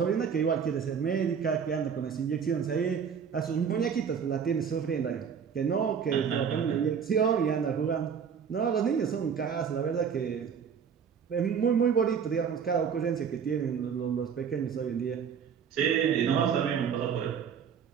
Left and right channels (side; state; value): left; quieter; 7.1 dB